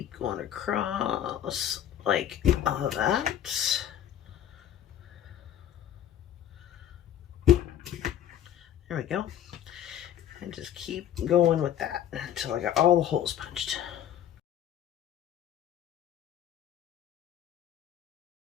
going across like all that. There we go. And just keep going with that until I got all the holes punched.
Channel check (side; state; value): right; quieter; 10.5 dB